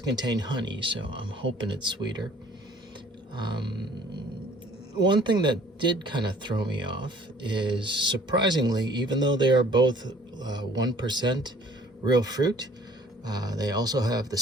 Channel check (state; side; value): normal; both; correlation 0.54